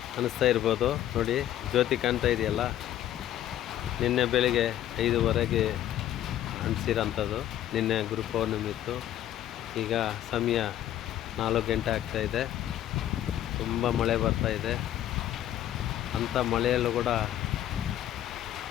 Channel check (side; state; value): right; quieter; 12.1 dB